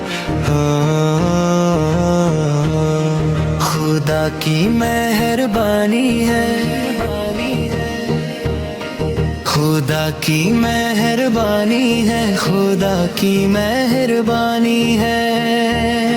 खुदा की मेहरबानी है, खुदा की मेहरबानी है, खुदा की मेहरबानी है।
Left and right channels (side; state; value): both; identical; correlation 1.00